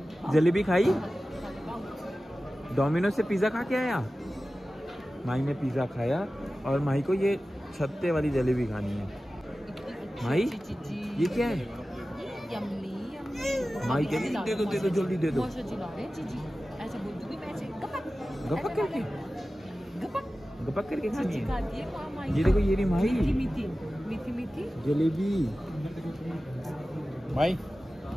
जलेबी खाई? डोमिनोज से पिज़्ज़ा खा के आया? माई ने पिज़्ज़ा खाया और माई को ये छत्ते वाली जलेबी खानी है। माई ये क्या है? माई कह रही दे दो जल्दी दे दो। गपक करके गपक करके खानी है। ये देखो ये रही माई मीठी जलेबी। भाई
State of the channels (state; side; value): normal; both; correlation 0.95